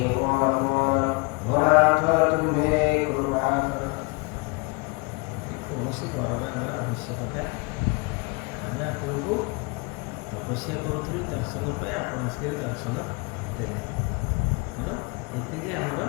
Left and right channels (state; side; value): quieter; right; 28.3 dB